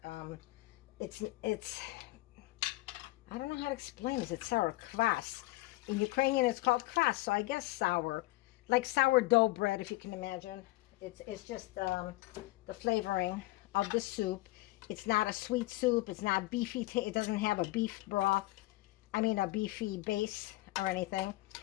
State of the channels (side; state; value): right; quieter; 19.5 dB